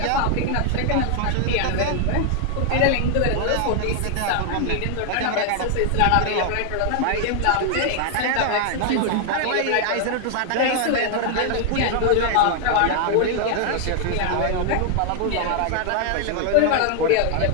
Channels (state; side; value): different; both; correlation 0.00